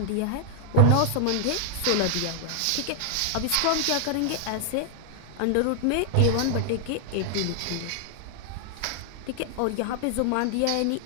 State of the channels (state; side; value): different; both; correlation 0.00